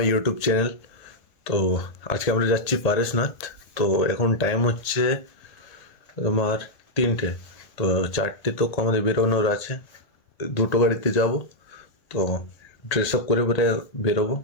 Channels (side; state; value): right; late; 1.8 ms